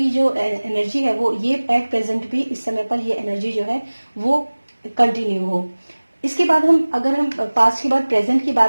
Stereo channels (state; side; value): inverted; both; correlation -1.00